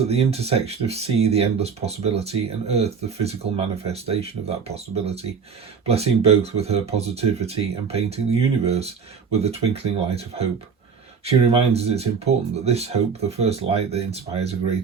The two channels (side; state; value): left; quieter; 5.9 dB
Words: the intersection of sea, the endless possibility, and earth, the physical manifestation of that possibility, blessing both with her positivity and painting the universe with the twinkling light of hope. She reminds us it's important that this hope, the first light that inspires a